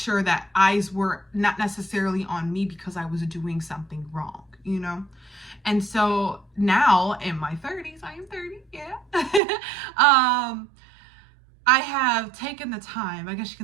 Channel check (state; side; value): drops out; left; at 9.4 s